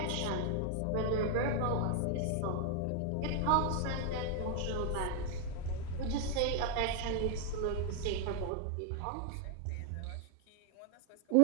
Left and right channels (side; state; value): both; different; correlation 0.00